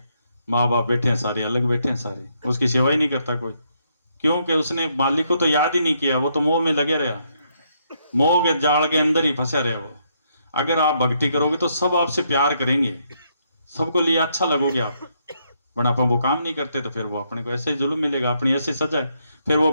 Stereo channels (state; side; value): inverted; both; correlation -0.75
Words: माँ बाप बैठे हैं सारे, अलग बैठे हैं सारे, उसकी सेवा ही नहीं करता कोई, क्योंकि उसने मालिक को तो याद ही नहीं किया, वो तो मोह में लगे रहा, मोह के जाल के अंदर ही फंसा रहे वो। अगर आप भक्ति करोगे तो सब आपसे प्यार करेंगे, सबको लिए अच्छा लगोगे आप, बट अपन वो काम नहीं करते तो फिर वो अपने को ऐसे ही जुल्म मिलेगा, अपनी ऐसे सजा है। फिर वो